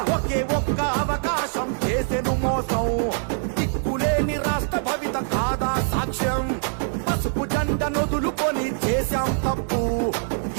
ఒకే ఒక్క అవకాశం చేసెను మోసం, దిక్కులేని రాష్ట్ర భవిత కాదా సాక్ష్యం, పసుపు జెండ నొదులుకొని చేశాం తప్పు,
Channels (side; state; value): left; silent; digital silence